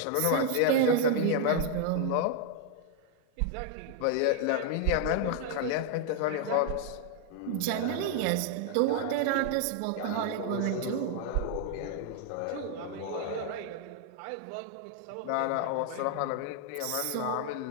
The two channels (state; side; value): different; both; correlation 0.00